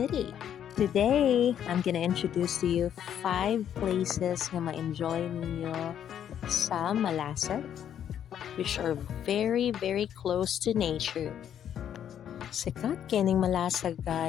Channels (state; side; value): quieter; right; 9.6 dB